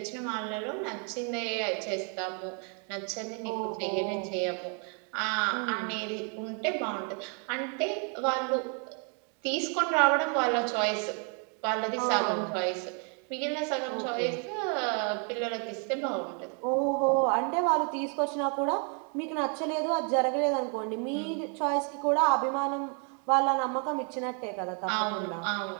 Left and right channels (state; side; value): quieter; left; 39.2 dB